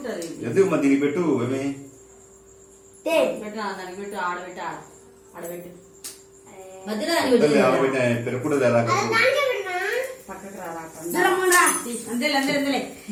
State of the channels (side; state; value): both; identical; correlation 1.00